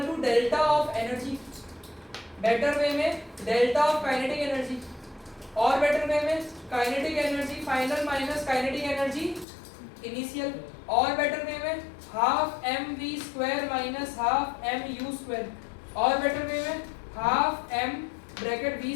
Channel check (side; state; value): right; drops out; at 9.5 s